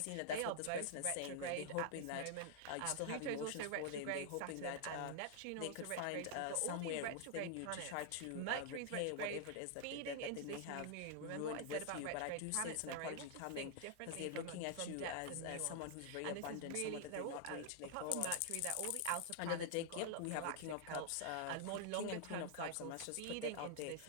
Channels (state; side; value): different; both; correlation -0.01